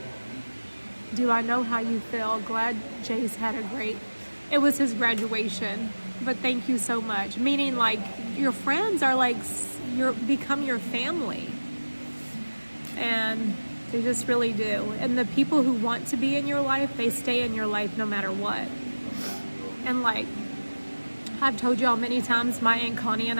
Do I know how you feel? Glad Jay's had a great... It was his graduation, but thank you so much. Meaning, like, your friends are like, become your family. And they just really do. And the people who want to be in your life, they stay in your life no matter what. And like, I've told y'all many times, my Aunt Connie and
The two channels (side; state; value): both; inverted; correlation -1.00